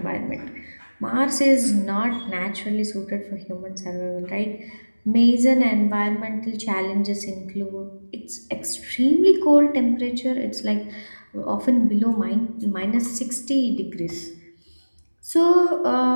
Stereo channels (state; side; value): inverted; both; correlation -1.00